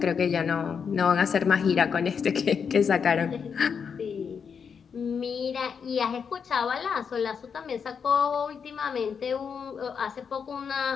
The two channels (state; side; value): quieter; right; 6.5 dB